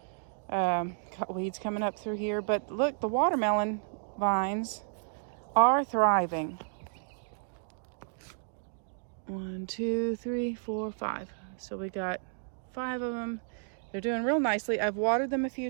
Got weeds coming up through here, but look, the watermelon vines are thriving. 1, 2, 3, 4, 5. So we got 5 of them. They're doing real nicely. I've watered them a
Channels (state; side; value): silent; left; digital silence